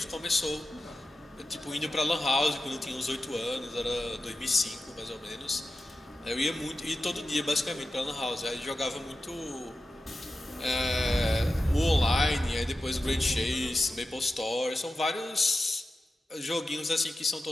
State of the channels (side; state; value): both; normal; correlation 0.92